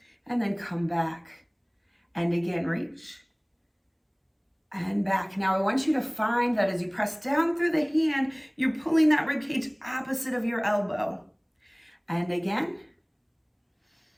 and then come back and again reach and back. Now I want you to find that as you press down through the hand, you're pulling that rib cage opposite of your elbow. And again.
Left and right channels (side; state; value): both; identical; correlation 1.00